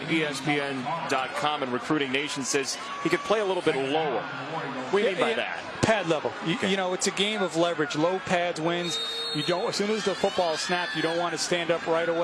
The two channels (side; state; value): both; identical; correlation 1.00